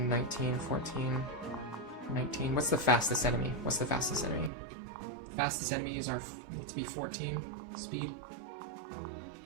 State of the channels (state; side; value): drops out; left; at 4.5 s